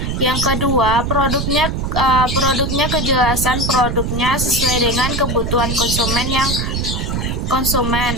Yang kedua, produknya kejelasan produknya sesuai dengan kebutuhan konsumen.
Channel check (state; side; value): noise; right; rumble, 1 dB below the sound